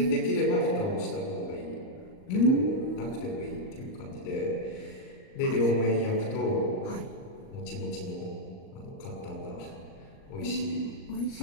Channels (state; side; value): late; right; 38 ms